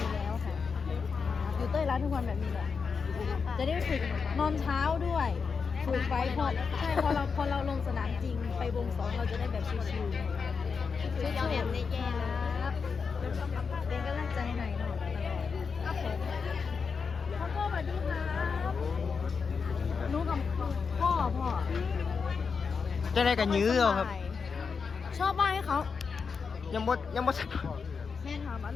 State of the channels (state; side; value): quieter; right; 5.5 dB